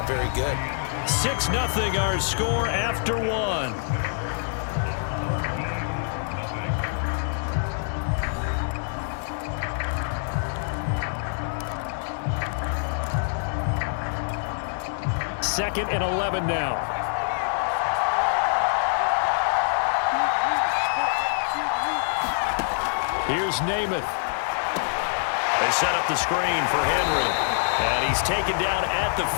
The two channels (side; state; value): right; silent; digital silence